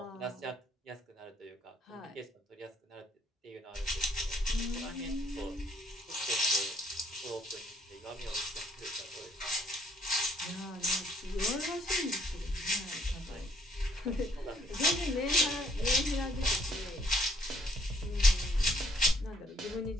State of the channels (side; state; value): both; normal; correlation 0.66